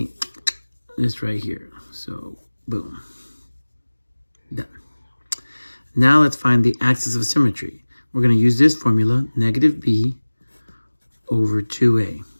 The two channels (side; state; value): both; inverted; correlation -1.00